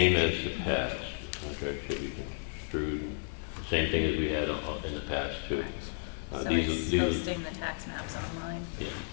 as the past. Contract should be construed, the same thing as we had in the past too. So These it's are- posting the tax maps online. Yeah,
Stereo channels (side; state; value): right; silent; 56 dB below the other